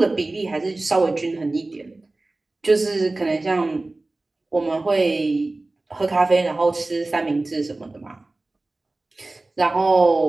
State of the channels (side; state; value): left; quieter; 3.0 dB